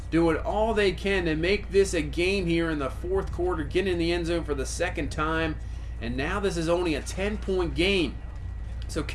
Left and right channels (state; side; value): identical; both; correlation 1.00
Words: doing all they can to make this a game here in the fourth quarter, getting in the end zone for the 2nd time. And now this is only a 10-point game. So